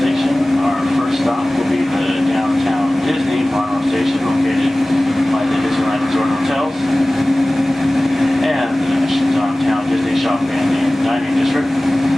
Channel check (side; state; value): both; normal; correlation 0.98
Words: Station. Our first stop will be the downtown Disney Mono Station, located by the Disneyland Resort Hotels and the downtown Disney Shopping and Dining District.